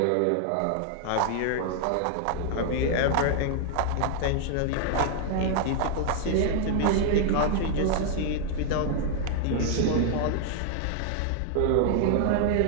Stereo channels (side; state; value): both; different; correlation -0.01